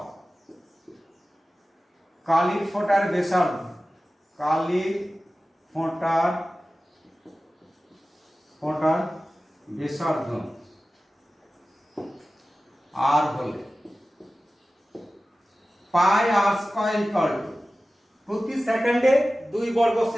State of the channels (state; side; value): normal; both; correlation 0.96